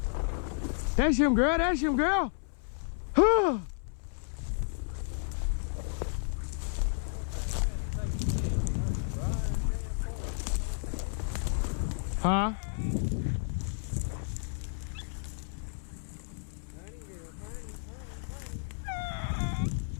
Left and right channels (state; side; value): silent; right; 56 dB below the other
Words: That's him, girl. That's him, girl. Huh?